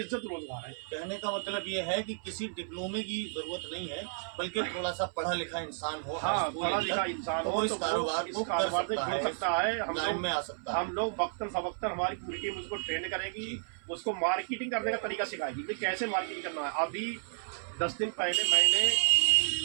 रोजगार है। कहने का मतलब ये है कि किसी डिप्लोमे की जरूरत नहीं है, बल्कि थोड़ा सा पढ़ा लिखा इंसान हो, हाँ, पढ़ा लिखा इंसान तो हो इस तो कारोबार को कर सकता है। लाइन में आ सकता है। हम लोग वक्तन फवक्तन हमारी पूरी टीम उसको ट्रेन करेगी, उसको मार्केटिंग करने का तरीका सिखाएगी कि कैसे मार्केटिंग करना है। अभी 10 दिन पहले मैंने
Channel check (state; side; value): silent; left; 56 dB below the other